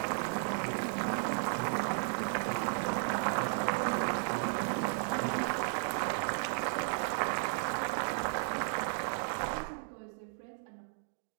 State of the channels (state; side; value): silent; left; digital silence